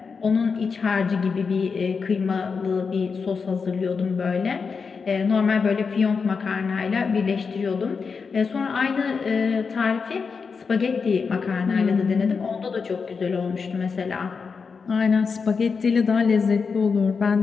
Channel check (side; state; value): right; quieter; 5.3 dB